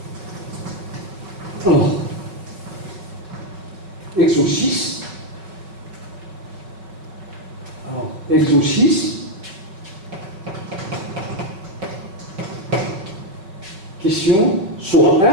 Alors, exo 6. Alors, exo 6. Question question soit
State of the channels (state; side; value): late; left; 5.2 ms